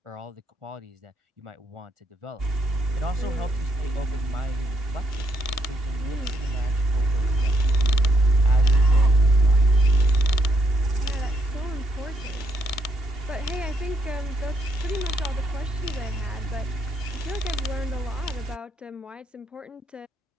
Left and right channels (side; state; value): both; normal; correlation 0.75